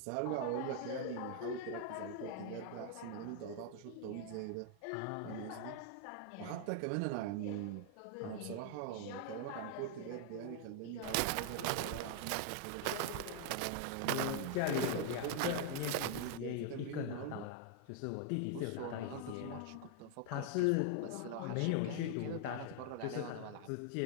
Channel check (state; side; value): different; both; correlation 0.00